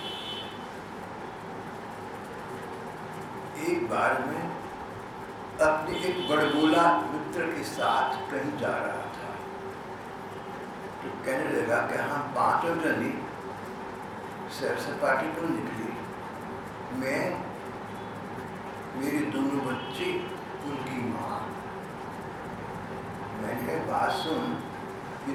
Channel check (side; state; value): both; identical; correlation 1.00